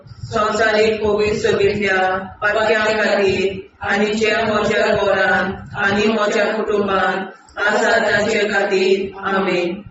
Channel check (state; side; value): identical; both; correlation 1.00